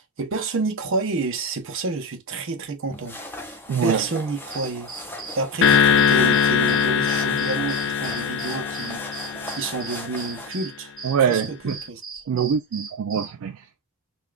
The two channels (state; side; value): normal; both; correlation 0.16